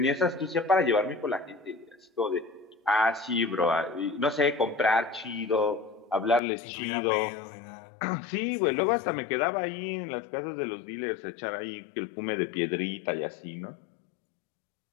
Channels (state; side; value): drops out; right; at 6.4 s